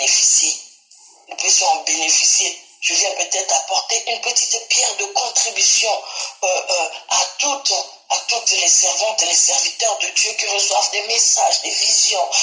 Nous puissions en bénéficier. Je viens peut-être apporter une petite pierre de contribution à toutes les servantes et les serviteurs de Dieu qui reçoivent des messages, des visions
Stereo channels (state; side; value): identical; both; correlation 1.00